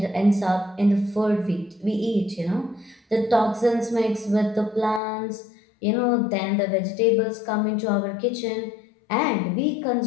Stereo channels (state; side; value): drops out; right; at 5.0 s